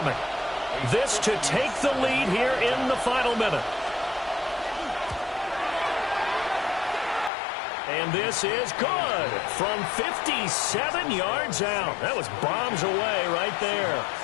This to take the lead here in the final minute. And this is good from 57 yards out. That was bombs away right there.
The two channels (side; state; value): right; drops out; at 7.3 s